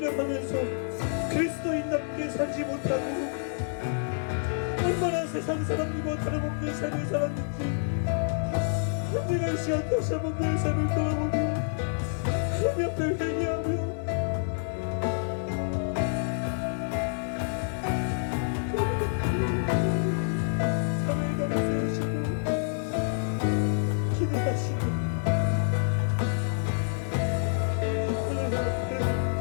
그리스도인답게 살지 못하고 얼마나 세상 사람들과 다름없는 삶을 살았는지 내가 이 시간 다시 한번 내 삶을 돌아보고 하나님 앞에 회개하며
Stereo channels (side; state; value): right; silent; digital silence